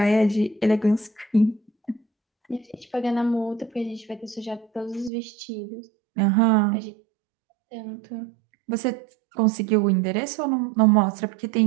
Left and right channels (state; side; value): drops out; left; at 5.1 s